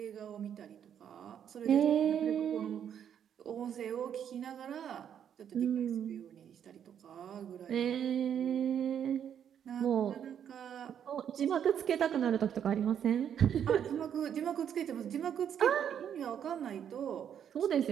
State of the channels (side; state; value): left; quieter; 8.9 dB